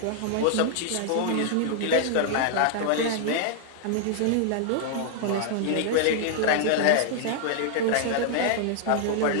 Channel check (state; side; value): different; both; correlation -0.01